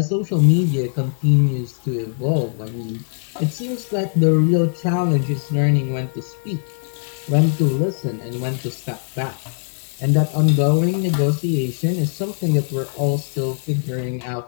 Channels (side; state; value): right; silent; 65 dB below the other